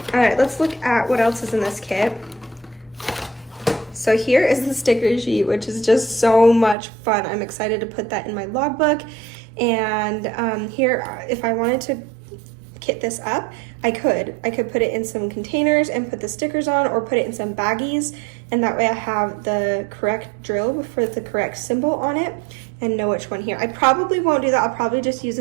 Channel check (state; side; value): drops out; left; at 6.8 s